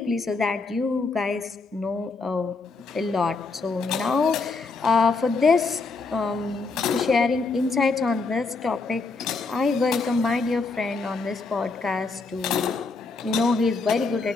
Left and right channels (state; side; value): quieter; right; 4.1 dB